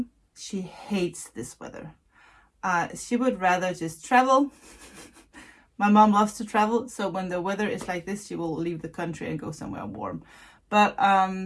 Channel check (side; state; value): both; identical; correlation 1.00